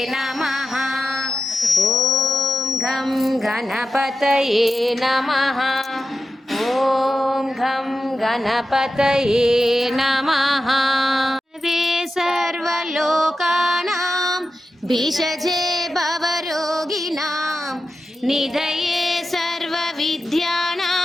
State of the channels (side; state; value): both; normal; correlation 0.91